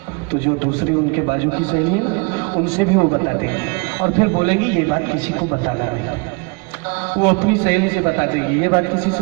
तो जो दूसरी उनके बाजू की सहेली है ना, उनसे भी वो बता देंगे और फिर बोलेंगी ये बात किसी को बताना नहीं। वो अपनी सहेली से बता देगी, ये बात किसी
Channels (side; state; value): left; quieter; 30.4 dB